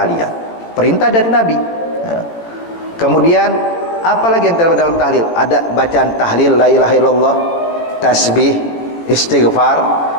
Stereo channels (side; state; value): right; late; 18 ms